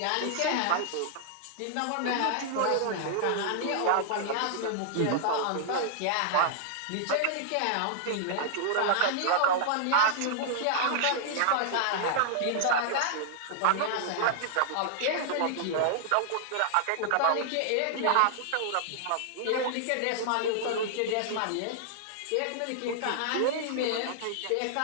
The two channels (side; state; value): both; different; correlation -0.01